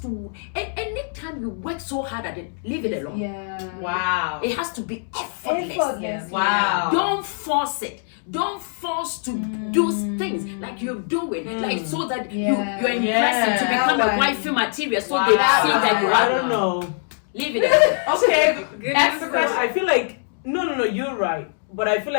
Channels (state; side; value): silent; right; digital silence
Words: to. Anytime you work so hard at it, leave it alone. Yeah. Wow. It has to be effortless. Effortless. Wow. Don't force it. Don't force to do things like you're doing, like so that Yeah. you're impressing to Yeah. become That a one. wifey material, so Wow. they see that you I are. don't know. Leave it alone. Okay. Good Ask the news. question. I feel like no, you're right. But I feel